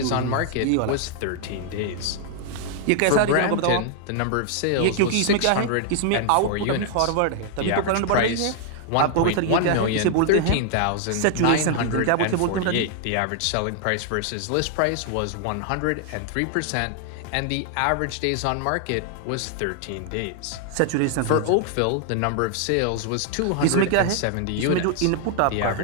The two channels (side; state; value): both; different; correlation 0.00